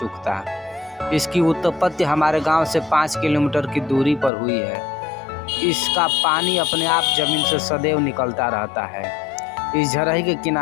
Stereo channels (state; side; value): drops out; right; at 4.3 s